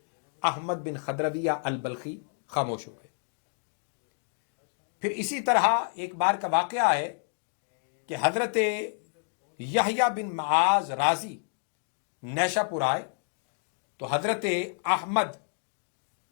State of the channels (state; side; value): silent; right; 58 dB below the other